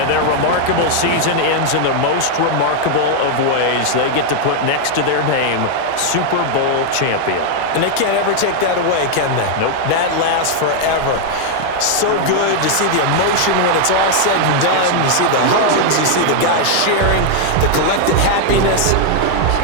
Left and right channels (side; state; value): both; different; correlation 0.00